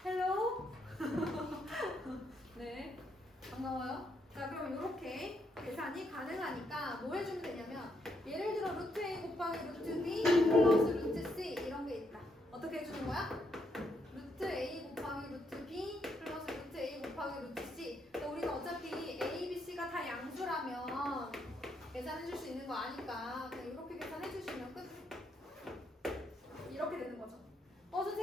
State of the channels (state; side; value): normal; both; correlation 0.77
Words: 헬로? 네, 반가워요. 자, 그럼 이렇게 계산이 가능하니까 뭐 해주면 되냐면, 예를 들어 루트 a 곱하기 루트 b 플러스 루트 c 이런 게 있다. 어떻게 해주는 거야? 루트 a 곱하기 루트 b 플러스 루트 a 곱하기 루트 c. 그러니까 우리가 어차피 a, b, c가 다 양수라면 계산해줄 수 있는 거 아니까 그냥 이렇게 계산해주시면 끝. 이렇게 되는 거죠.